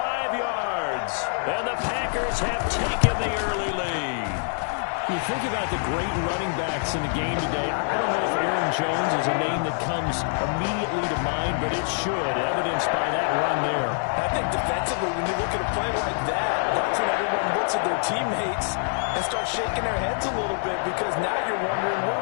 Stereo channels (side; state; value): right; silent; 61 dB below the other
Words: yards. And the Packers have taken the early lead. You think about the great running backs in the game today. I don't know if Aaron Jones is a name that comes immediately to mind, but it should, evidenced by that run there. I think defensively, when you look at a play like that, that's when everyone looks at their teammates and starts shaking their heads a little bit, because now you're wondering,